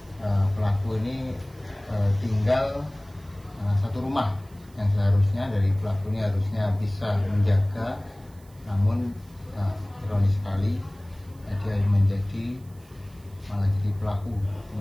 pelaku ini tinggal satu rumah, yang seharusnya dari pelaku ini harusnya bisa menjaga, namun ironis sekali dia menjadi malah jadi pelaku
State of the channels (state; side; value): noise; right; hiss, 29 dB below the sound